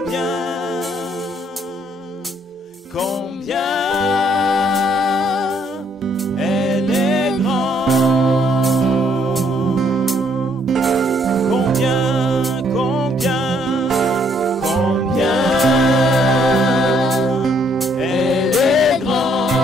elle est grand.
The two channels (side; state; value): both; normal; correlation 0.68